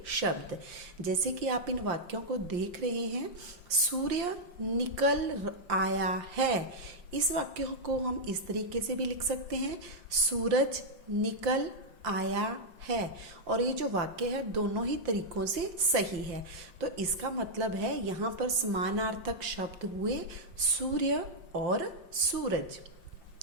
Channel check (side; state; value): left; late; 5.7 ms